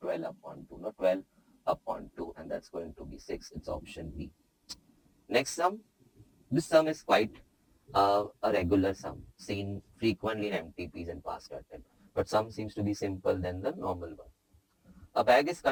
12 upon 2, not 12 upon 2, and that's going to be 6. It's option B. Next sum. This sum is quite a regular sum seen frequently in MTPs and past attempt, but sum seems to be simple than the normal one. A bag is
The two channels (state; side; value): identical; both; correlation 1.00